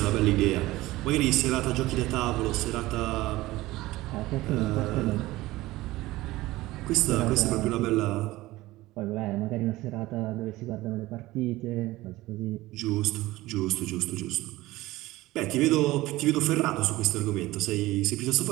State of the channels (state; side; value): quieter; left; 18.1 dB